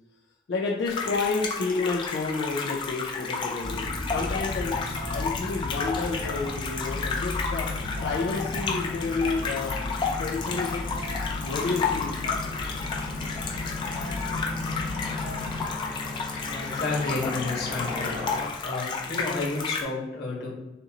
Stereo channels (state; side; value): quieter; right; 3.6 dB